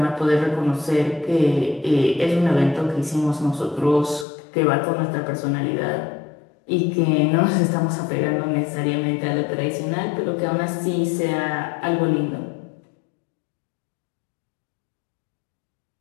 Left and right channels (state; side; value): drops out; right; at 4.2 s